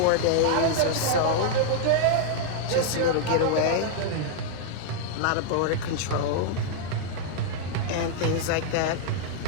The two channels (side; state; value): both; different; correlation -0.01